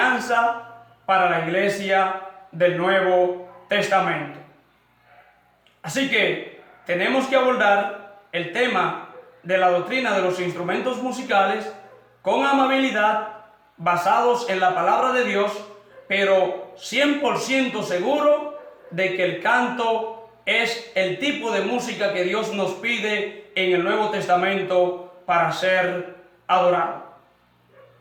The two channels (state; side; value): identical; both; correlation 1.00